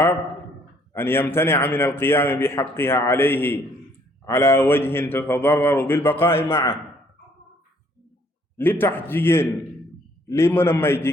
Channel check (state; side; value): normal; both; correlation 0.64